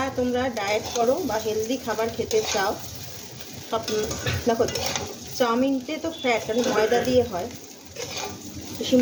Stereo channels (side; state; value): both; identical; correlation 1.00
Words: তোমরা ডায়েট করো বা হেলদি খাবার খেতে চাও, সব দেখো, চাউমিনতে তো ফ্যাট, কারণ ময়দা দিয়ে হয়,